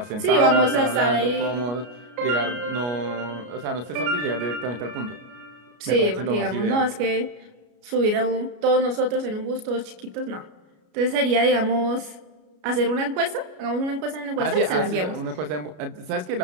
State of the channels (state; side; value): late; left; 33 ms